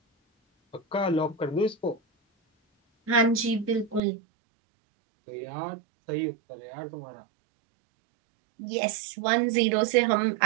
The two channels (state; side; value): drops out; left; at 4.0 s